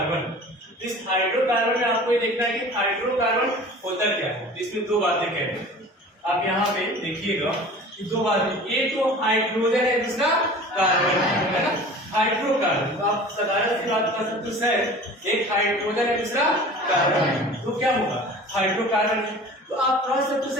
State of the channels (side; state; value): both; normal; correlation 0.41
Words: इस हाइड्रोकार्बन में आपको ये देखना है कि हाइड्रोकार्बन होता क्या है। इसमें दो बातें कह रहे हैं, आप यहाँ पे देखिएगा कि दो बातें, एक तो हाइड्रोजन है, दूसरा कार्बन है ना। हाइड्रोकार्बन तो आप साधारण सी बात कर सकते हो सर, एक हाइड्रोजन है दूसरा कार्बन है, तो क्या होगा हाइड्रोकार्बन है। तो आप कह सकते हो